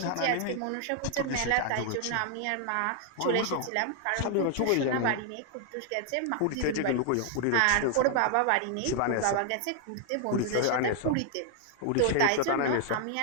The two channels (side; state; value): both; different; correlation 0.00